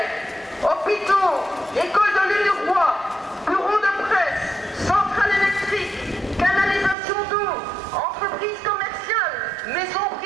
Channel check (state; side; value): drops out; left; at 7.0 s